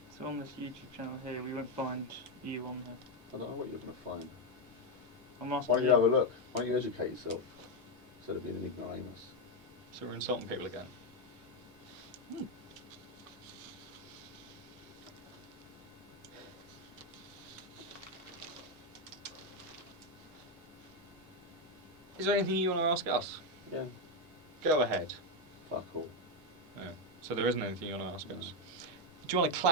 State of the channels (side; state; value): both; normal; correlation 0.04